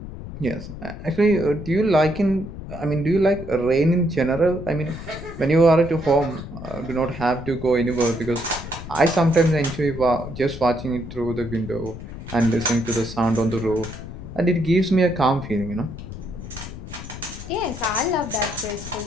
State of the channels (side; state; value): left; noise; rumble, 11 dB below the sound